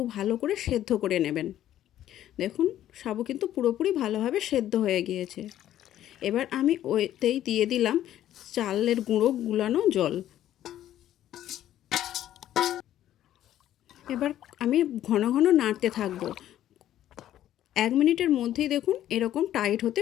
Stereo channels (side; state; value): right; quieter; 12.2 dB